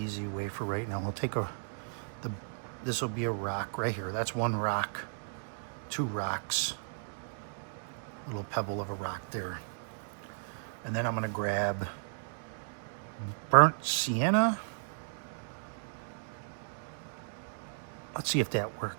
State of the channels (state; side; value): silent; left; digital silence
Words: way for right now. We'll take this will be a rock right here. That's one rock, two rocks. Little pebble of a rock there. And then I'm gonna grab burnt sienna. Let's see if that